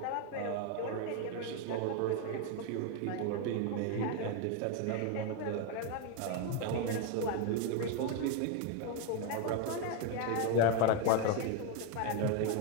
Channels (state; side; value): different; both; correlation 0.02